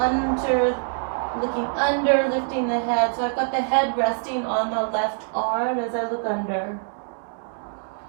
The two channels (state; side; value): silent; left; digital silence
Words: looking under, lifting the head. So I've got the head resting on the left arm as I look under.